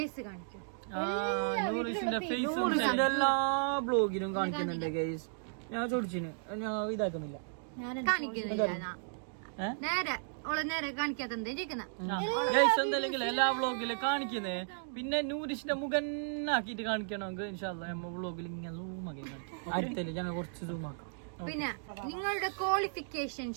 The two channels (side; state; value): left; silent; digital silence